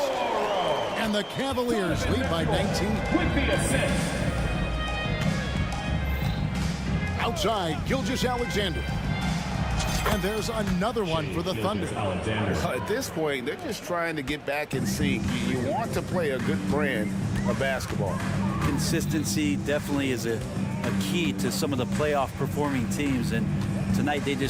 And the Cavaliers lead by 19. With the assist. Outside, Gilgeous-Alexander. And there's another one for the Thunder. At this point, they're just trying to get back in sync. You want to play a good brand of basketball. Consistency definitely is a key to some of the playoff performing teams, and tonight they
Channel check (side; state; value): both; identical; correlation 1.00